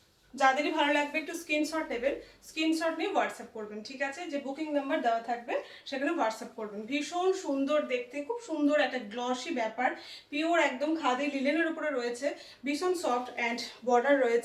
যাদেরই ভালো লাগবে একটু স্ক্রিনশট নেবেন, স্ক্রিনশট নিয়ে হোয়াটসঅ্যাপ করবেন, ঠিক আছে? যে বুকিং নাম্বার দেওয়া থাকবে সেখানে হোয়াটসঅ্যাপ করবেন। ভীষণ সুন্দর দেখতে, খুব সুন্দর একটা গ্লসি ব্যাপার, পিওর একদম খাদি লিলেনের উপরে রয়েছে, ভীষণ সফট অ্যান্ড বর্ডার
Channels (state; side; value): identical; both; correlation 1.00